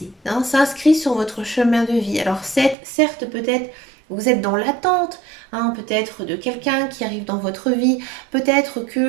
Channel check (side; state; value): left; drops out; at 2.8 s